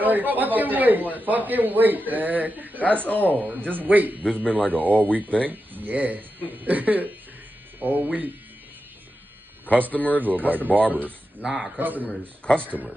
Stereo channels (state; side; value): normal; both; correlation 0.90